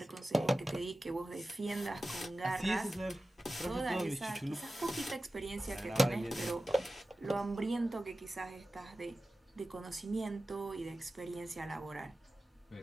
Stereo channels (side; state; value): both; normal; correlation 0.95